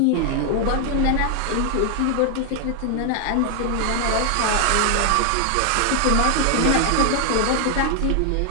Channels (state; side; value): different; both; correlation 0.00